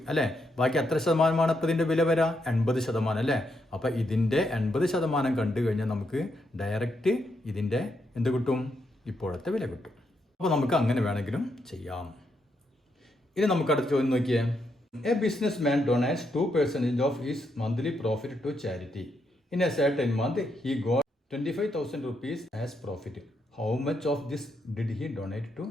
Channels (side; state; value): both; normal; correlation 0.80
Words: അല്ലേ. ബാക്കി എത്ര ശതമാനമാണ് ഇപ്പോൾ ഇതിൻ്റെ വില വരാം? 80% അല്ലേ. അപ്പോൾ ഇതിൻ്റെ 80% കണ്ടു കഴിഞ്ഞാൽ നമുക്ക് ഡയറക്റ്റ് ഇതിൻ്റെ എന്ത് കിട്ടും? ഇപ്പോഴത്തെ വില കിട്ടും. അപ്പോൾ നമുക്ക് അങ്ങനെ വേണമെങ്കിലും ചെയ്യാം. ഇനി നമുക്ക് അടുത്ത ചോദ്യം നോക്കിയേ. A businessman donates 2% of his monthly profit to charity. In a certain month he got 25,000 rupees as profit. How much of this did he donate to